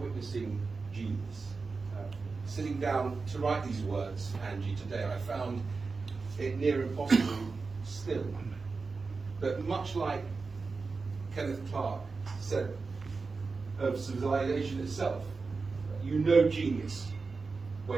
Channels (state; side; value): quieter; left; 4.3 dB